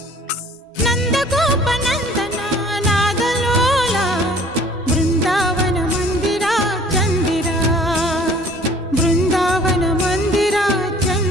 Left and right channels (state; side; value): normal; both; correlation 0.53